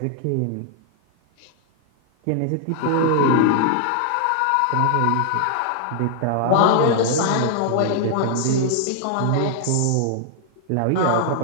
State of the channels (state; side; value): different; both; correlation 0.00